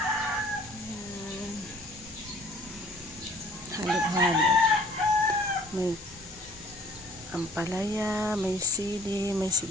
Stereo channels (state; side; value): noise; left; hiss, 17 dB below the sound